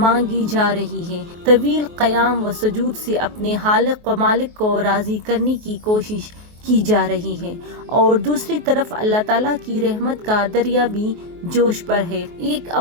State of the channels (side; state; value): left; late; 23 ms